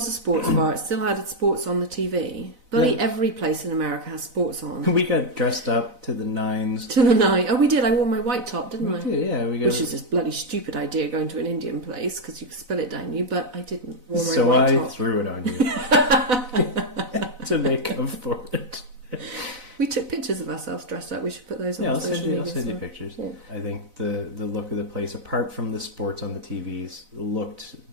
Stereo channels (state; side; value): late; left; 4.0 ms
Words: a sports bar. It still had sports on the TV. Bloody every place in America has sports on. We got dressed up to the nines. To the night. Oh, we did. I wore my white top, didn't I? We did, yeah. Which is a bloody stupid idea going to an Indian place because you could spill it down you, but I didn't. Wore my So white I top. threw it on you to make up for it. We took pictures of ourselves dressed up. We should put those on Yeah, I'll social send you media. pictures. Yeah. I think the look of the place, apart from the sports on the TVs, looked